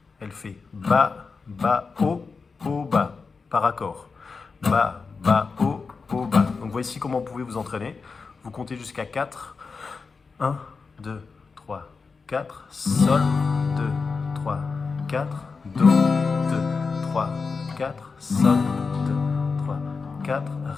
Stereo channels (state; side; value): quieter; right; 4.7 dB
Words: elle fait Ba, Ba, O, O, Ba, par accord. Ba, Ba, O, O, Ba. Donc voici comment vous pouvez vous entraîner. Vous comptez jusqu'à 4. 1, 2, 3, 4. Sol, 2, 3, 4. Do, 2, 3, 4. Sol, 2, 3, 4.